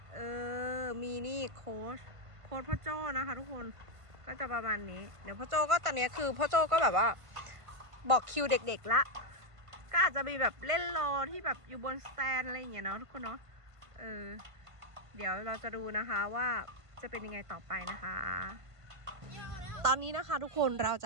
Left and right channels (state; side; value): late; left; 1.5 ms